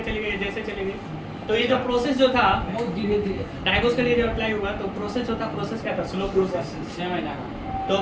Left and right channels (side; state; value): both; identical; correlation 1.00